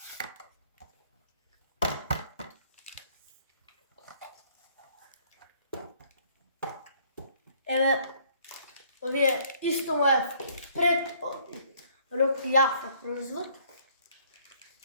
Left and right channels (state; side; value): inverted; both; correlation -0.62